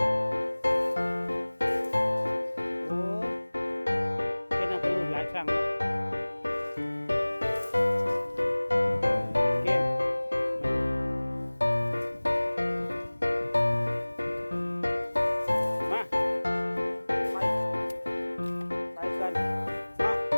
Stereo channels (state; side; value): inverted; both; correlation -1.00